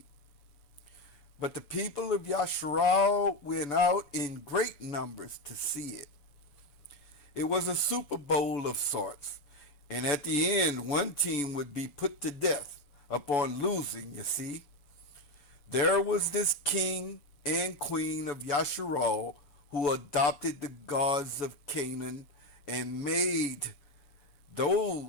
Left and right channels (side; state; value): right; late; 7.0 ms